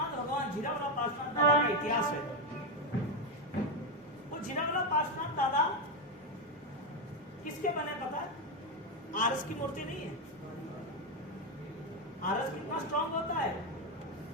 भगवान जीरावला पार्श्वनाथ दादा का इतिहास है, वो जीरावला पार्श्वनाथ दादा किसके बने पता है? आरस की मूर्ति नहीं है। आरस कितना स्ट्रॉन्ग होता है?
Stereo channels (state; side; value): normal; both; correlation 0.08